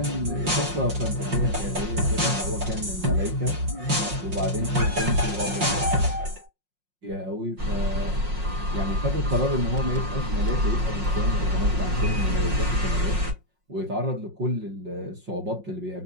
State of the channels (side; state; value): left; late; 5.5 ms